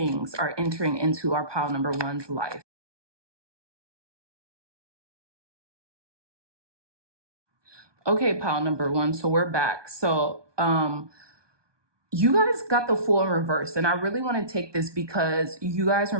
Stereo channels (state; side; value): late; left; 1.2 ms